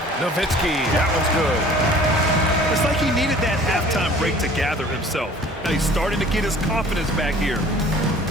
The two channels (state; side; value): normal; both; correlation 0.49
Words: Nowitzki, that one's good. It's like he needed that halftime break to gather himself. Now he's starting to get his confidence back here.